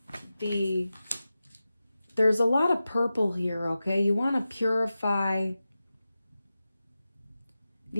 there's a lot of purple here, okay? You want to purify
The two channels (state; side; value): inverted; both; correlation -0.93